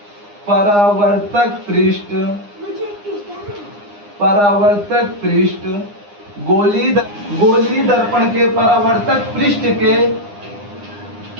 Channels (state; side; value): late; left; 9.8 ms